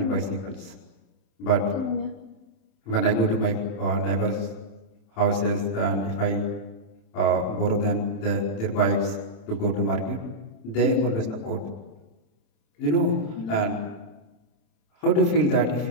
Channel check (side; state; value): right; late; 26 ms